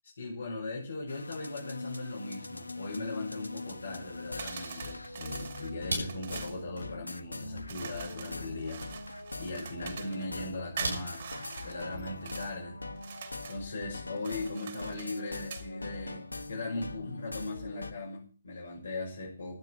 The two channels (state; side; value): inverted; both; correlation -0.80